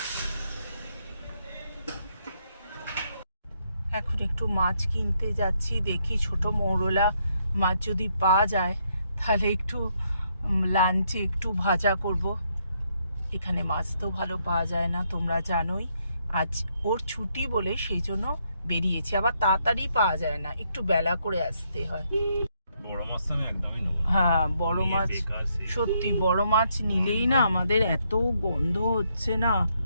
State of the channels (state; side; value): inverted; both; correlation -0.75